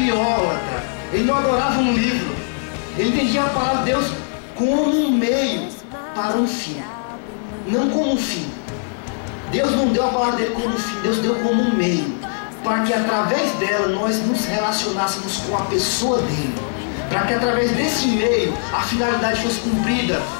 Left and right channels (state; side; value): silent; right; 65 dB below the other